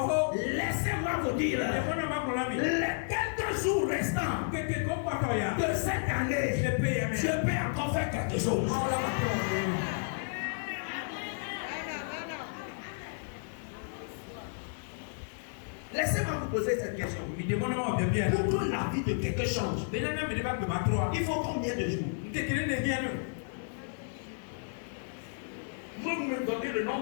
Laissez-moi vous dire, les quelques jours restants de cette année, je peux encore faire quelque chose. Laissez-moi vous poser cette question. Pour que la vie de quelqu'un change, il faut combien de jours? Vous me donnez le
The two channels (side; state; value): right; silent; digital silence